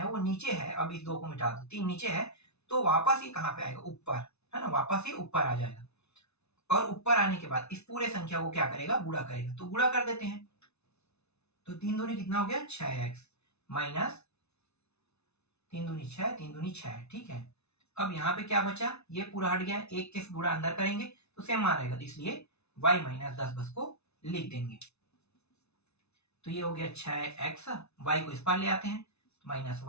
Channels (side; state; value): right; late; 0.81 ms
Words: वो नीचे है, अब इस 2 को मिटा दो, 3 नीचे है, तो वापस ये कहाँ पे आएगा, ऊपर, है ना, वापस ये ऊपर आ जाएगा, और ऊपर आने के बाद इस पूरे संख्या को क्या करेगा, गुणा करेगा, तो गुणा कर देते हैं, तो 3 दूनी कितना हो गया, 6x माइनस 3 दूनी 6, 3 दूनी 6, ठीक है। अब यहाँ पे क्या बचा, ये पूरा हट गया, एक के गुणा अंदर करेंगे तो सेम मान रहेगा, इसलिए y माइनस 10 बस को लिख देंगे, तो ये हो गया 6x, y को इस पार ले आते हैं, माइनस